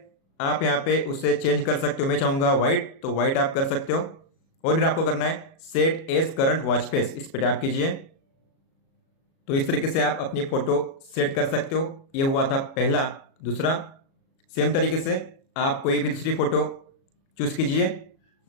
आप यहाँ पे उसे चेंज कर सकते हो, मैं चाहूंगा व्हाइट, तो व्हाइट आप कर सकते हो। और फिर आपको करना है set as current watch face, इस पे टैप कीजिए। तो इस तरीके से आप अपनी फोटो सेट कर सकते हो। ये हुआ था पहला। दूसरा, सेम तरीके से आप कोई भी दूसरी फोटो चूज कीजिए।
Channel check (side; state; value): right; late; 37 ms